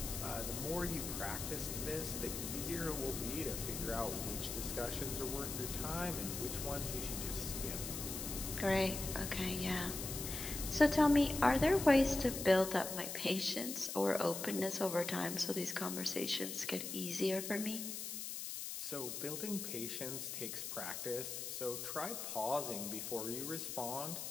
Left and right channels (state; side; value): noise; left; hiss, 5 dB below the sound